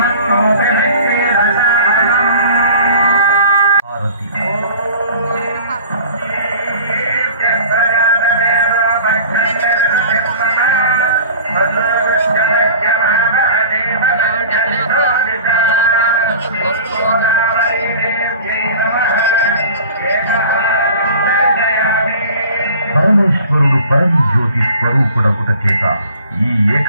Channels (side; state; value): both; inverted; correlation -0.43